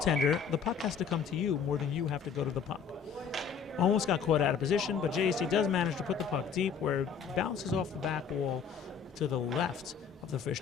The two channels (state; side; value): quieter; right; 6.6 dB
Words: the puck has to come to you more than you have to go to the puck. Almost got caught out of position, but JEC does manage to put the puck deep where it bounces off the back wall to the left of the